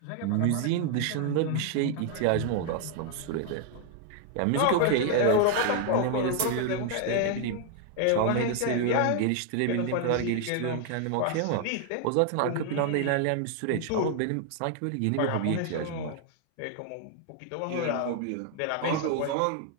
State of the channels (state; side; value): different; both; correlation 0.00